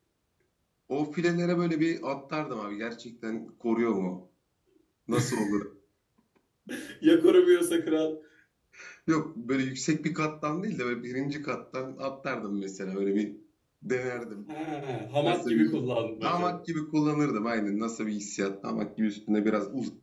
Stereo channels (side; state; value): both; identical; correlation 1.00